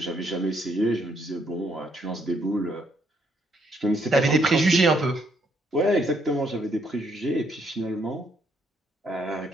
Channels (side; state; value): both; normal; correlation 0.71